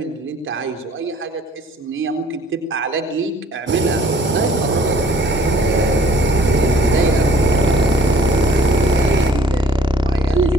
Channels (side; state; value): both; normal; correlation 0.56